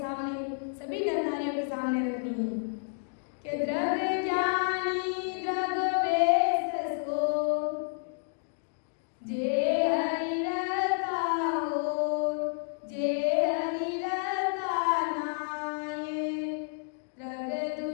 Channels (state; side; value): silent; right; digital silence